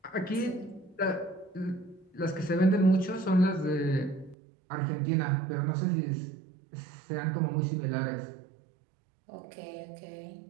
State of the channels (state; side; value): drops out; left; at 4.4 s